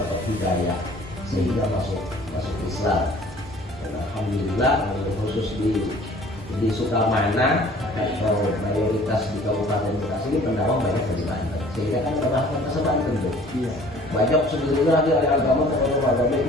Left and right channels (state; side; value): normal; both; correlation 0.51